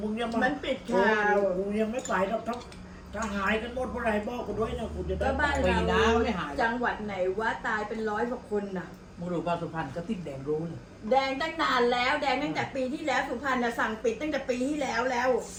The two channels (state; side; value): identical; both; correlation 1.00